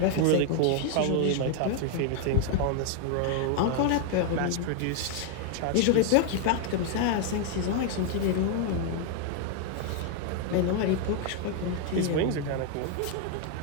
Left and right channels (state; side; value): different; both; correlation 0.00